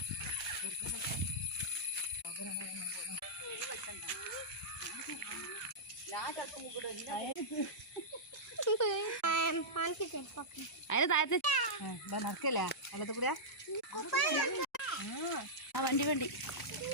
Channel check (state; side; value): normal; both; correlation -0.11